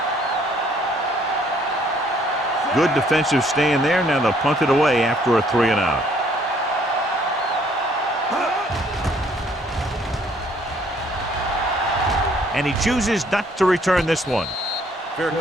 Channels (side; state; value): both; normal; correlation 0.63